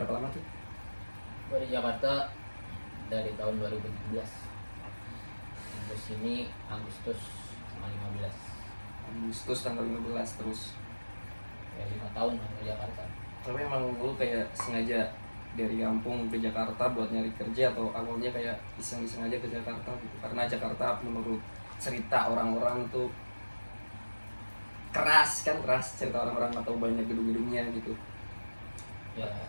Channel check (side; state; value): both; inverted; correlation -1.00